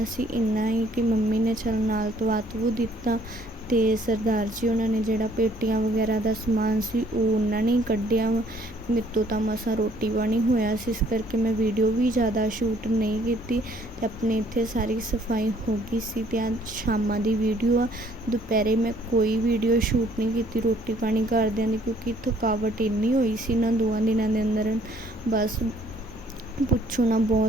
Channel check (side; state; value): both; normal; correlation 0.62